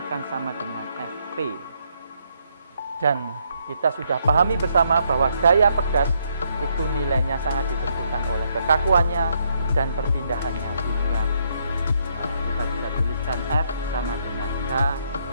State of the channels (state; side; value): inverted; both; correlation -0.73